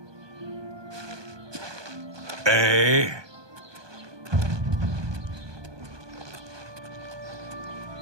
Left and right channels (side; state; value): left; late; 1.2 ms